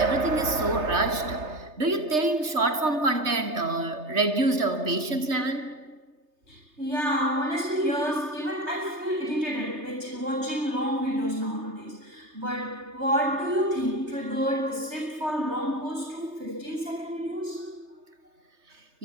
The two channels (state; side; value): late; left; 3.3 ms